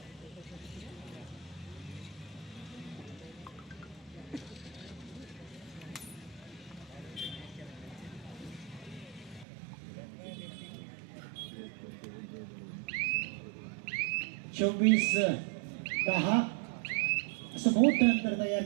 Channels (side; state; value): left; drops out; at 9.5 s